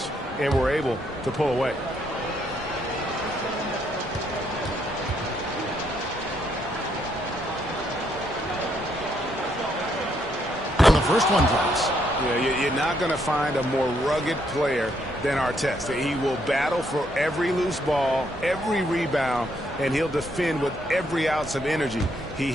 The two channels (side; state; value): both; normal; correlation 0.73